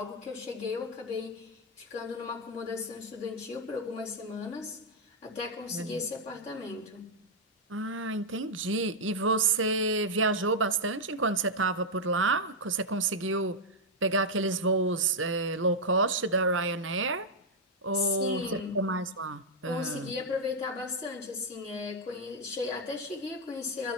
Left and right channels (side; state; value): both; normal; correlation -0.03